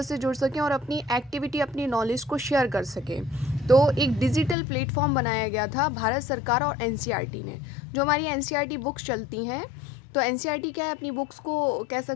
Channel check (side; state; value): right; drops out; at 4.5 s